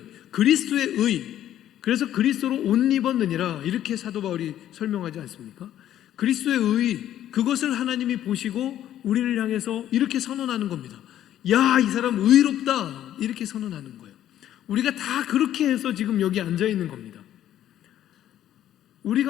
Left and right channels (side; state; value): right; quieter; 11.8 dB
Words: 그리스도의 의, 그래서 그리스도로 옷 입었느니라 이렇게 사도 바울이 설명하지 않습니까? 그리스도의 의, 그것을 하나님이 보시고 우리를 향해서 이렇게 선언하는 겁니다. 야, 이 사람 의롭다, 이렇게 선언하는 거예요. 우리가 다 그렇게 해서 지금 여기 앉아 있는 겁니다.